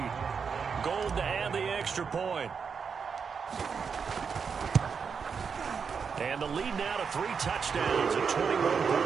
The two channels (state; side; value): quieter; left; 6.0 dB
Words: Gold to add the extra point. And the lead now to 3 touchdowns at 21